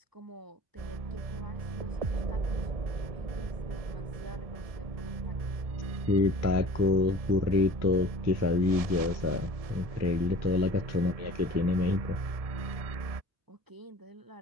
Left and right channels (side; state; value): left; late; 1.7 ms